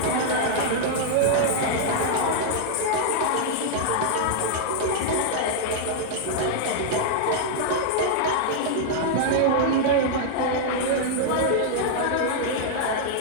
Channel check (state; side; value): different; both; correlation -0.01